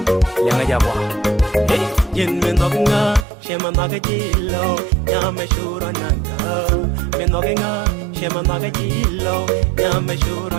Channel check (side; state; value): left; drops out; at 3.2 s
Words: yang aja wa hey yin men nga shema magajilo nyame shura nanga men nga shema magajilo nyame